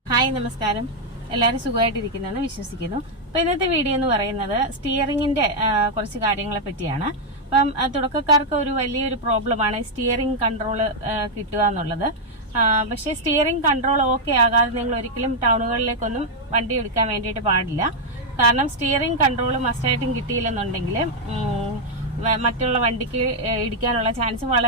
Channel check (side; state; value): both; normal; correlation -0.01